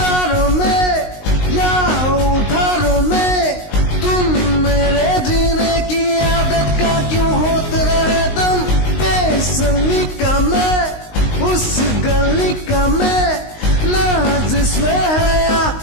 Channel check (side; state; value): right; late; 19 ms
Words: में या उधारों में तुम मेरे जीने की आदत का क्यों होते रहे दम। बेसमी का मैं, उस गली का मैं, ना जिसमें है या